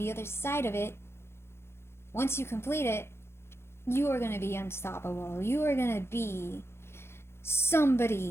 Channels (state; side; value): late; right; 0.12 ms